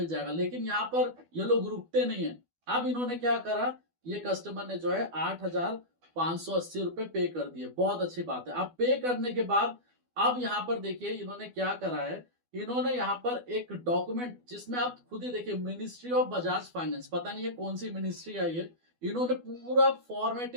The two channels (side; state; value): left; late; 12 ms